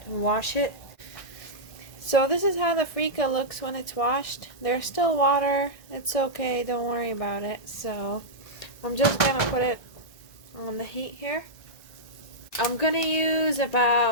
and wash it. So this is how the freekeh looks when it's washed. There's still water. It's okay, don't worry about it. So I'm just going to put it on the heat here. I'm going to use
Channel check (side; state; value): right; late; 1.6 ms